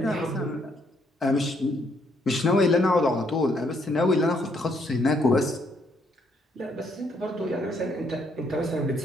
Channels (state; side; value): normal; both; correlation 0.71